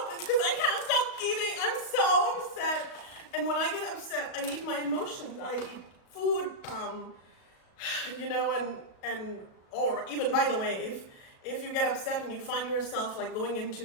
it's because I can't stop eating. I'm so upset. And when I get upset, I eat my emotions. I eat food, you know, or even, by the way, if you get upset and you find yourself like going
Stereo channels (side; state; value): right; late; 37 ms